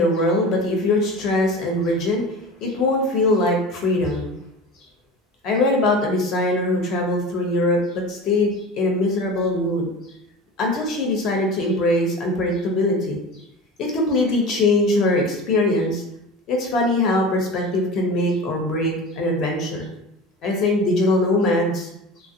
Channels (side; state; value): both; normal; correlation 0.34